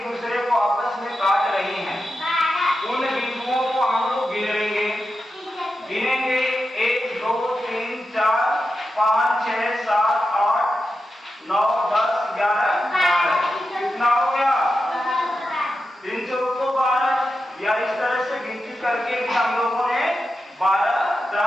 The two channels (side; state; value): both; normal; correlation 0.89